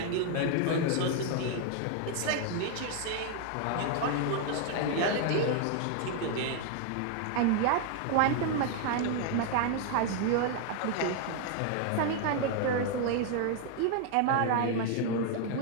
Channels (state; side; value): different; both; correlation 0.00